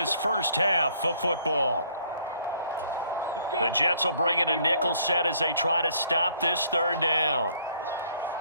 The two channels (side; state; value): both; inverted; correlation -0.63